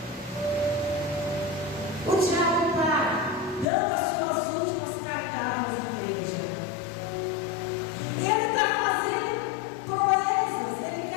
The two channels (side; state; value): right; drops out; at 3.7 s